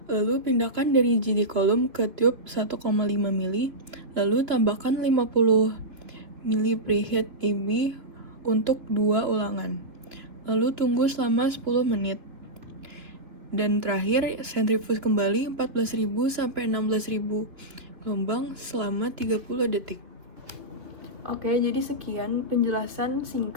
Lalu pindahkan dari GD column ke tube 1,5 ml. Lalu tambahkan 50 ml preheat EB untuk 2 ulangan. Lalu tunggu selama 10 menit. Dan terakhir, centrifuge kembali 14.000 sampai 16.000 gelombang selama 30 detik. Oke, jadi sekian penjelasan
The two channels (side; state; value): left; late; 2.8 ms